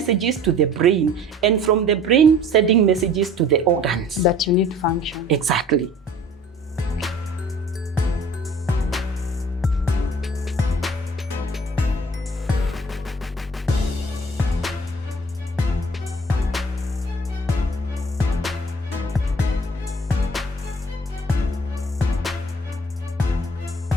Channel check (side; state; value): both; normal; correlation 0.49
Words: to the brain, and from the brain sending messages to the organs. That you need to function. Exactly.